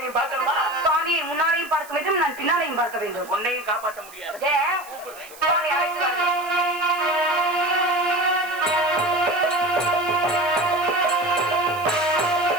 நீ பார்க்கணுமா? சுவாமியை முன்னாடியும் பார்க்க வேண்டும், நான் பின்னாலையும் பார்க்க வேண்டும். உன்னையும் காப்பாற்ற முடியாது.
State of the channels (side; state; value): right; noise; hiss, 19 dB below the sound